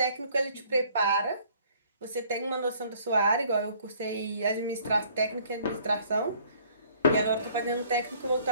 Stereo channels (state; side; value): inverted; both; correlation -0.58